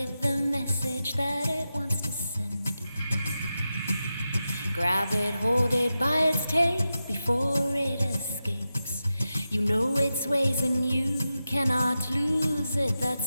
the message that it wants to send. Grab it, hold it by its tail before it escapes. You know its ways and you cannot lose it,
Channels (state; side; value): inverted; both; correlation -0.91